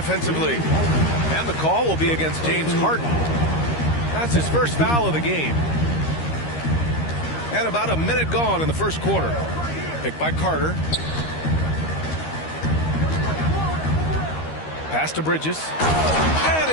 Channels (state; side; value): late; right; 13 ms